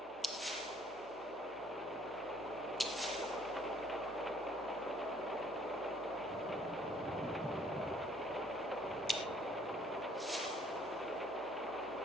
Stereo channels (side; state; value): both; normal; correlation 0.61